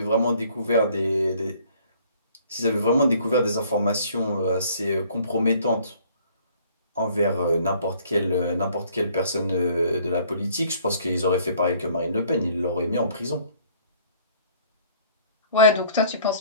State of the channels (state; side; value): inverted; both; correlation -0.58